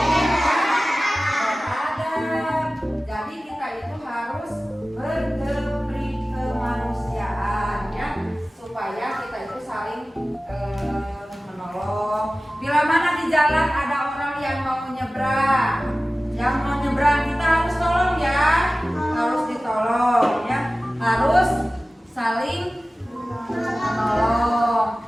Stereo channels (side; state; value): both; normal; correlation 0.97